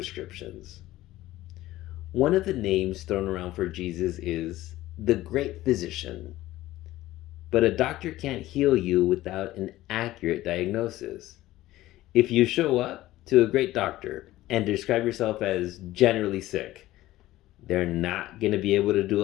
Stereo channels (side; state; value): right; quieter; 16.1 dB